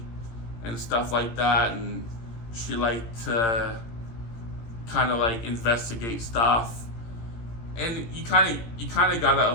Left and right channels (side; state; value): right; late; 18 ms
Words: and stuff like that, and she liked to kind of like investigate stuff. And you kind of gotta